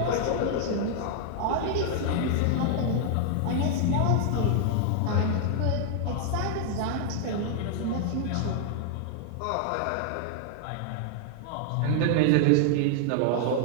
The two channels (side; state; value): both; different; correlation 0.00